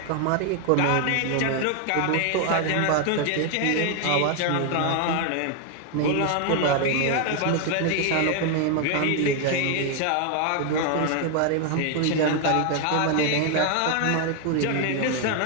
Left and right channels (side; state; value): both; different; correlation 0.01